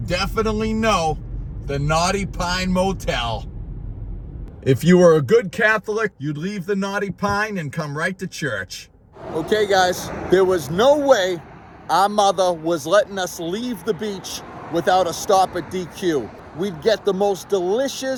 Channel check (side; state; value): both; identical; correlation 1.00